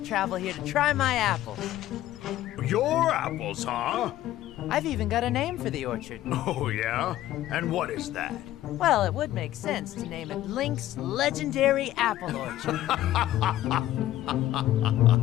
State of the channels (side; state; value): right; quieter; 13.9 dB